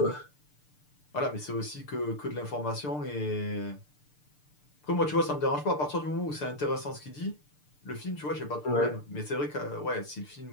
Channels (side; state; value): right; late; 6.7 ms